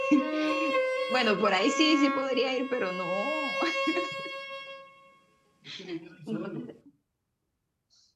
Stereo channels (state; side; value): identical; both; correlation 1.00